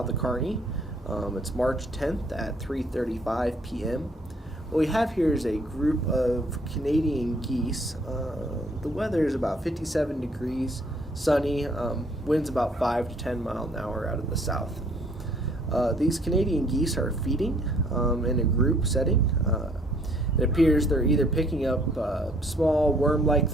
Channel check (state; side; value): normal; both; correlation 0.61